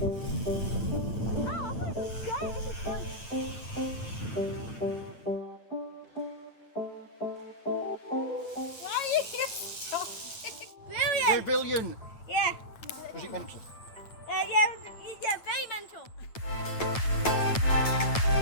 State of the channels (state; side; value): late; right; 8.9 ms